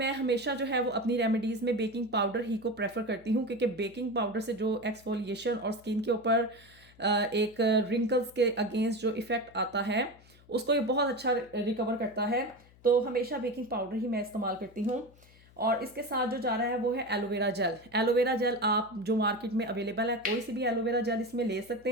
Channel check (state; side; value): noise; left; hum, 26 dB below the sound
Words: हमेशा जो है वो अपनी रेमेडीज़ में बेकिंग पाउडर ही को प्रेफर करती हूँ, क्योंकि बेकिंग पाउडर से जो एक्सफोलिएशन और स्किन के ऊपर एक रिंकल्स के अगेंस्ट जो इफ़ेक्ट आता है उसको ये बहुत अच्छा रिकवर करता है। तो हमेशा बेकिंग पाउडर ही मैं इस्तेमाल करती हूँ। और इसके साथ जो जा रहा है वो है एलोवेरा जेल। एलोवेरा जेल आप जो मार्केट में अवेलेबल है कोई सी भी एलोवेरा जेल इसमें ले